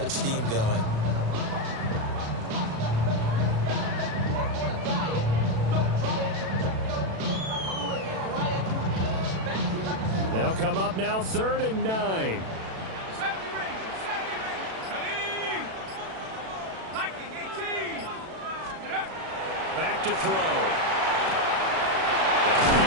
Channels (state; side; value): late; left; 36 ms